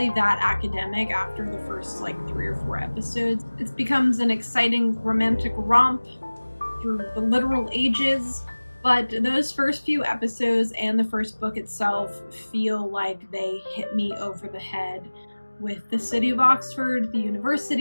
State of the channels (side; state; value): both; inverted; correlation -1.00